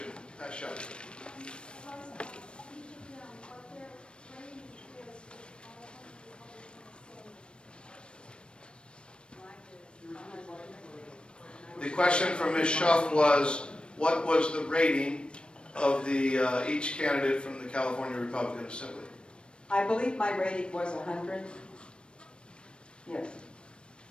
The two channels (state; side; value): late; right; 0.055 ms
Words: Pat Shelley. The question from Ms. Schuff was, what was the rating of the each candidate from the California Republican Assembly? I believe my rating was 100. Yes.